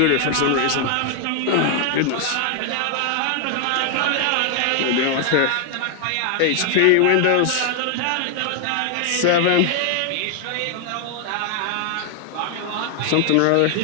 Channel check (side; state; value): both; different; correlation 0.00